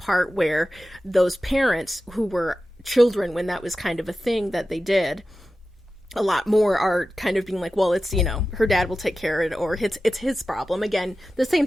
where those parents who were children when that was kind of a thing that they did, a lot more are kind of being like, well, it's, her dad will take care of it, or it's his problem. Again, the same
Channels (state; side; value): normal; both; correlation 0.94